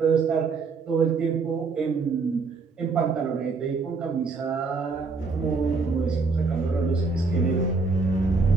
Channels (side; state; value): left; quieter; 4.4 dB